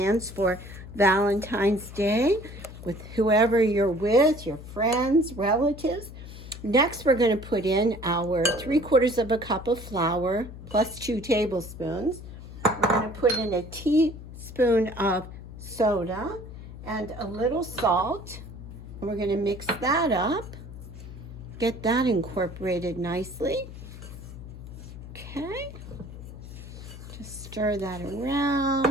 for Valentine's Day with whoever you're with, your friends, relatives. Next, we're going to put in our 3/4 of a cup of flour plus 2 tablespoons. We're going to put in a teaspoon of soda and a little salt. And we're going to mix that up. Get that incorporated nicely. Okay. Just stir that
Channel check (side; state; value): left; noise; hum, 13 dB below the sound